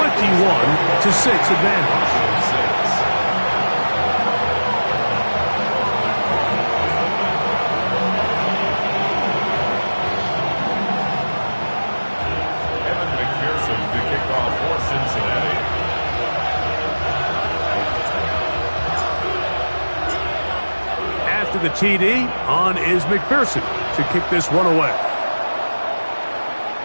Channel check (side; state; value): both; inverted; correlation -1.00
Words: advantage. After the TD, on is McPherson to kick this one away.